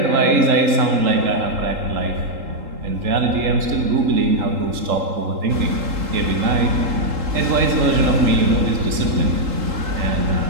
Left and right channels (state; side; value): late; left; 3.8 ms